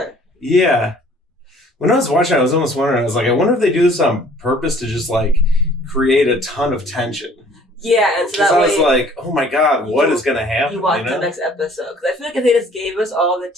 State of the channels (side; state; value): both; normal; correlation 0.55